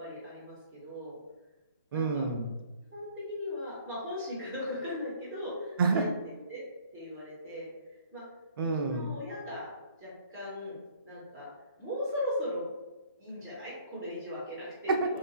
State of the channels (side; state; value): both; inverted; correlation -0.56